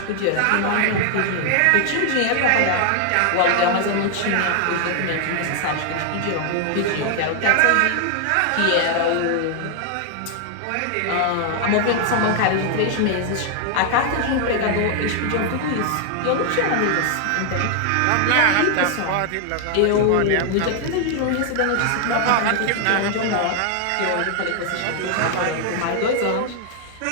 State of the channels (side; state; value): both; different; correlation 0.00